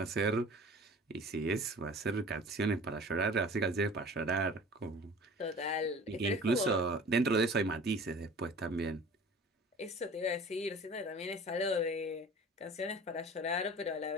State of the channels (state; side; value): normal; both; correlation 0.43